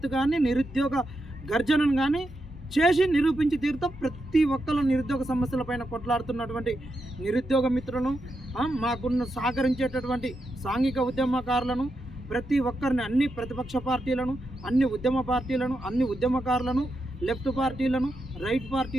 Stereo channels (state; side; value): normal; both; correlation 0.85